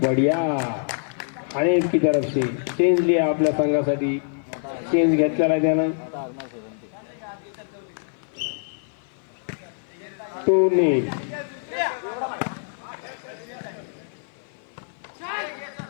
आणि की तरफ से चेंज लिया आपल्या संघासाठी. चेंज घेतलेला आहे त्यानं. 2-0.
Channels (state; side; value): silent; right; 55 dB below the other